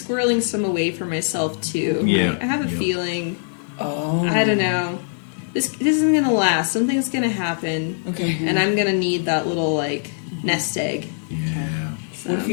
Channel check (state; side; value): silent; right; digital silence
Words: some away for myself too. Yeah. I have a feeling. Oh. I don't know. This isn't gonna last. Something's gonna happen. Okay. And I'm gonna need that little like nest egg. Yeah. So, What if you